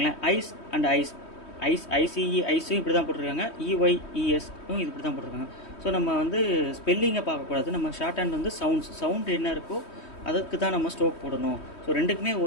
ஐஸ் அண்ட் ஐசிஇ ஐஸும் இப்படி தான் போட்டிருக்காங்க, இஒய்இஎஸ்ஸும் இப்படி தான் போட்டிருக்காங்க. ஸோ நம்ம வந்து ஸ்பெல்லிங்கை பார்க்கக்கூடாது, நம்ம ஷார்ட் ஹேண்ட் வந்து சவுண்டு என்ன இருக்கோ அதுக்கு தான் நம்ம ஸ்ட்ரோக் போடணும். ஸோ ரெண்டுக்குமே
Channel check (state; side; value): late; right; 3.2 ms